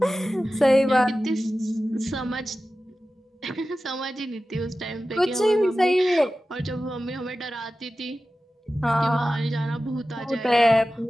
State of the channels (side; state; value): both; normal; correlation 0.95